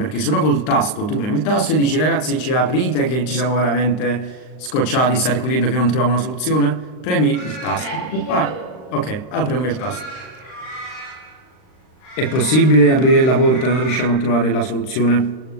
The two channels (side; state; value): right; late; 39 ms